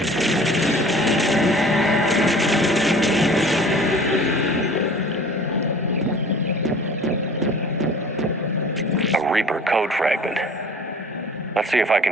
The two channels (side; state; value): both; normal; correlation 0.46